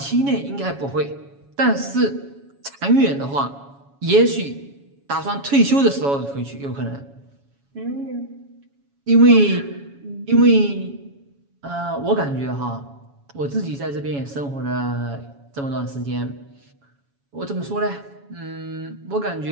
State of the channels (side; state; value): left; late; 7.2 ms